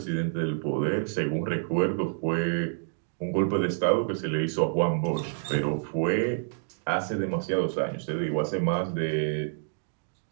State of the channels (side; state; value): left; silent; digital silence